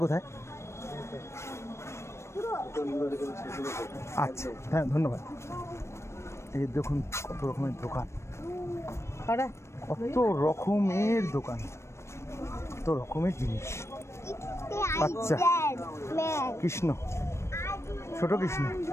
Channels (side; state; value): right; late; 0.13 ms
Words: কোথায়? আচ্ছা হ্যাঁ, ধন্যবাদ। এই দেখুন কত রকমের দোকান, কত রকমের দোকান, কত রকমের জিনিস। আচ্ছা, কৃষ্ণ, ছোট কৃষ্ণ।